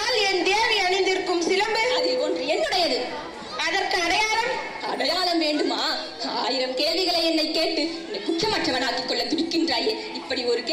என் தேவி அணிந்திருக்கும் சிலம்பு அதில் ஒன்று என்னுடையது. அதற்கு அடையாளம்? அடையாளம் வேண்டுமா? 1000 கேள்விகளை என்னை கேட்டு என்னை குற்றமற்றவனாக்கிக் கொள்ள துடிக்கின்றாயே. இப்படி ஒரு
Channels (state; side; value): identical; both; correlation 1.00